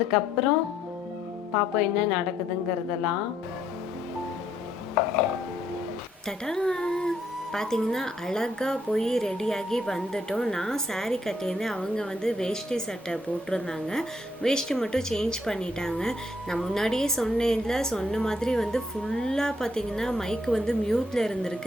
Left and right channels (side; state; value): both; normal; correlation 0.71